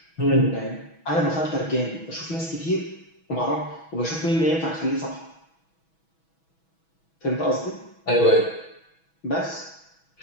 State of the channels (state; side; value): late; right; 6.2 ms